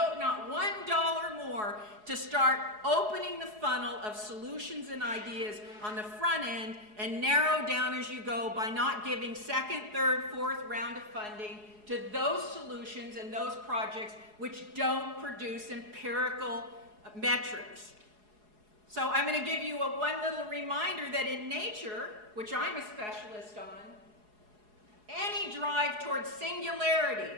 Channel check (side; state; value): left; late; 4.8 ms